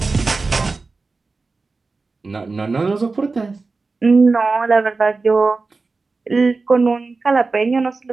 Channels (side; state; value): left; quieter; 3.9 dB